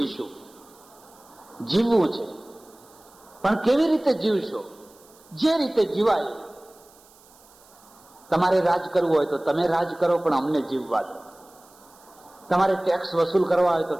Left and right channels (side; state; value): right; noise; hiss, 27 dB below the sound